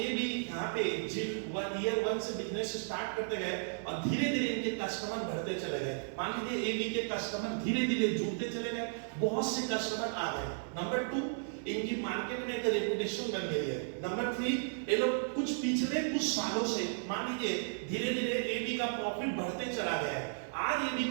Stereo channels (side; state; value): left; silent; 55 dB below the other